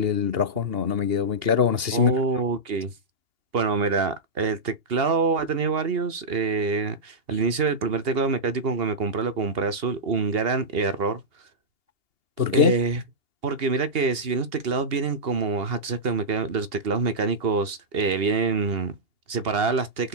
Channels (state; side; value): late; left; 2.8 ms